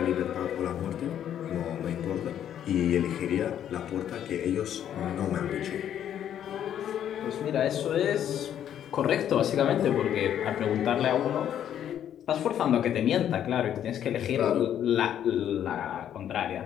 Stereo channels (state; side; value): quieter; right; 10.1 dB